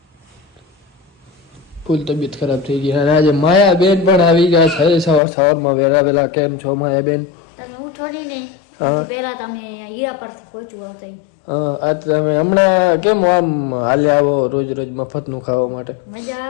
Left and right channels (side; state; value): right; drops out; at 5.2 s